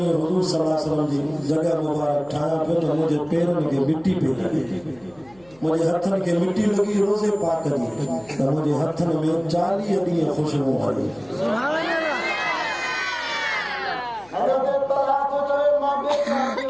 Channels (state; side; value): noise; left; hum, 29 dB below the sound